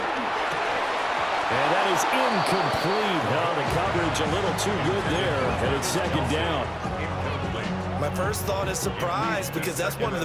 And that is incomplete. Oh, the coverage a little too good there, and it's 2nd down. My first thought is surprise because that's one of the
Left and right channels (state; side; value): identical; both; correlation 1.00